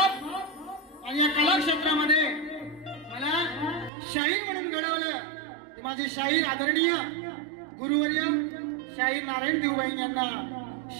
आणि या कला क्षेत्रामध्ये मला शाहीर म्हणून घडवलं ते माझे शाहीर आदरणीय गुरुवर्य शाहीर नारायण देवबाई यांना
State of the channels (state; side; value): drops out; left; at 3.9 s